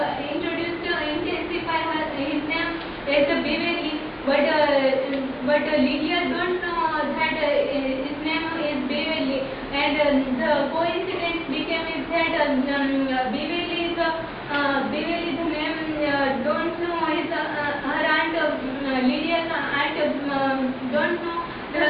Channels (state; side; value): identical; both; correlation 1.00